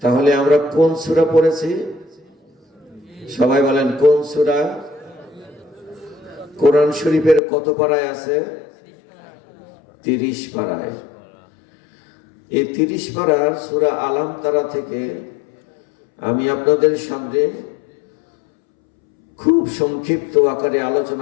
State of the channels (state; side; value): drops out; right; at 7.4 s